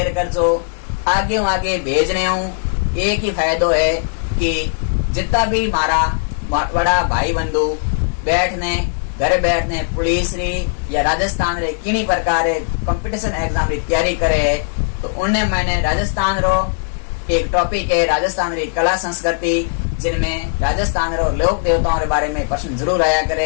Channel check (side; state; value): right; silent; 67 dB below the other